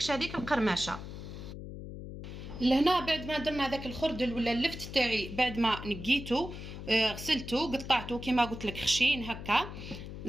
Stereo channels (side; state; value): left; noise; hum, 10 dB below the sound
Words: هذيك القرمشه. لهنا بعد ما درنا هذاك الخردل ولا اللفت تاعي، بعد ما نقيته غسلته قطعته كما قلت لك خشين هكا.